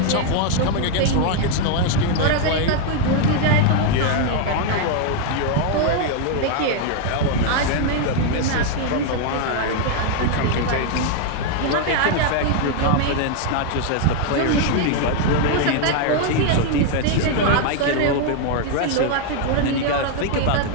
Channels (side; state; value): both; different; correlation 0.00